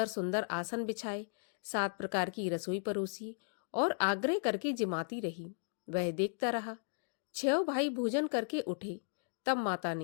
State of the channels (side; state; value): right; silent; digital silence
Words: सुंदर आसन बिछाए, 7 प्रकार की रसोई परोसी और आग्रह करके जिमाती रही। वह देखता रहा। 6 भाई भोजन करके उठे, तब माता